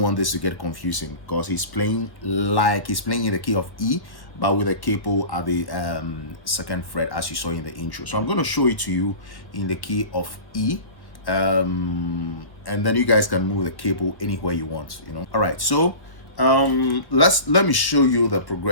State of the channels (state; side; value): late; right; 1.2 ms